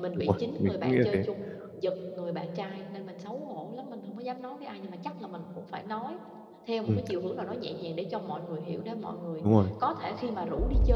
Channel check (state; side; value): identical; both; correlation 1.00